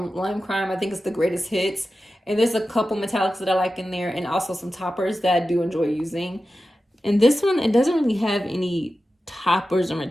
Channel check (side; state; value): both; normal; correlation 0.93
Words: Lime Crime. I think it's the Greatest Hits. And there's a couple metallics that I like in there, and also some toppers that I do enjoy using. And this one, it doesn't really have any toppers or